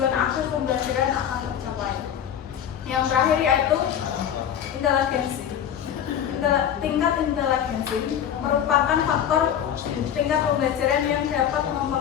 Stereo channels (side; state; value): right; quieter; 9.3 dB